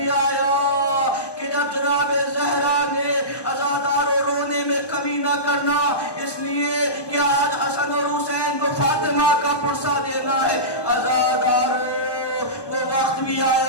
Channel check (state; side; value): late; right; 1.2 ms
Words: آیا کہ جب جناب زہرا نے عزادارو رونے میں کمی نہ کرنا، اس لیے کہ آج حسن اور حسین کو فاطمہ کا پرسہ دینا ہے. عزادارو وہ وقت بھی